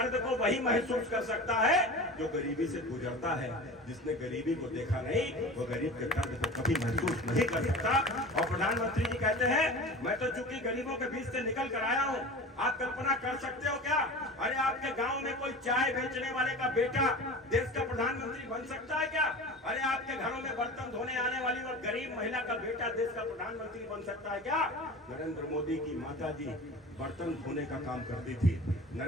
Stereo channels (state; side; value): normal; both; correlation 0.34